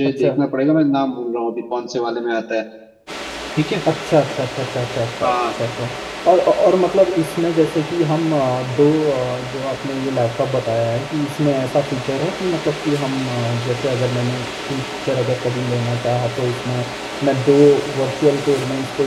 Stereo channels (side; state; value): both; identical; correlation 1.00